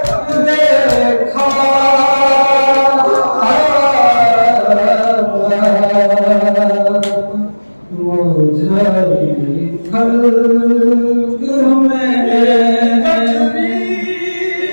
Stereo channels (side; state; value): both; inverted; correlation -1.00